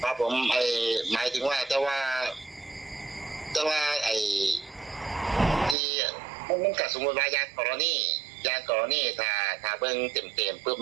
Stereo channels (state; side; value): drops out; left; at 5.8 s